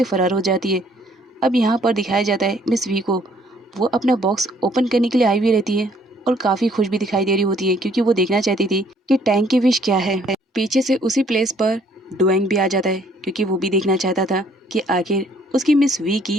फरार हो जाती है। अब यहाँ पर दिखाया जाता है मिस वी को, वो अपना बॉक्स ओपन करने के लिए आई हुई रहती है और काफ़ी खुश भी दिखाई दे रही होती है क्योंकि वो देखना चाहती थी कि टैंक की विश क्या है। पीछे से उसी प्लेस पर डुएंग भी आ जाता है क्योंकि वो भी देखना चाहता था कि आखिर उसकी मिस वी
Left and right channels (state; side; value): normal; both; correlation 0.62